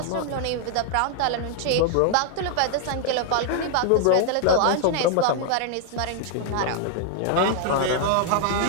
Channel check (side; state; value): both; different; correlation 0.00